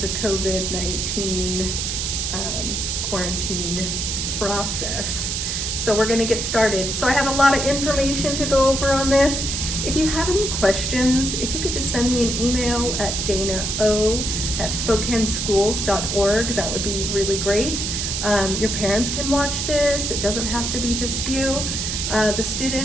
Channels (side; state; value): right; noise; hiss, 2 dB below the sound